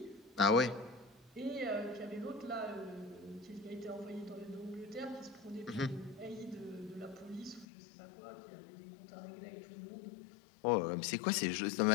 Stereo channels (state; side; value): drops out; right; at 7.7 s